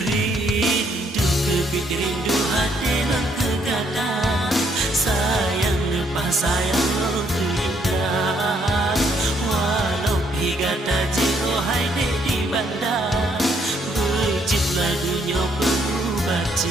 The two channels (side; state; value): both; normal; correlation 0.70